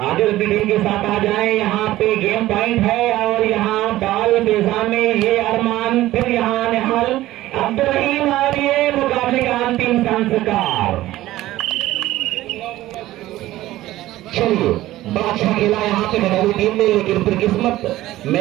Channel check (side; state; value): left; quieter; 15.8 dB